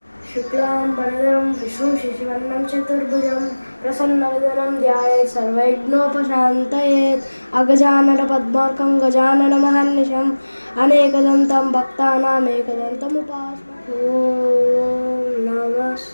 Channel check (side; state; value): both; inverted; correlation -1.00